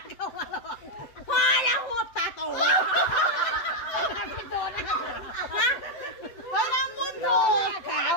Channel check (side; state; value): right; late; 7.9 ms